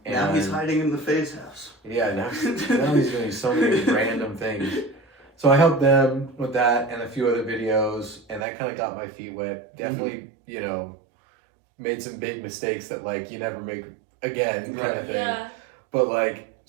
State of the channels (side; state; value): left; drops out; at 8.5 s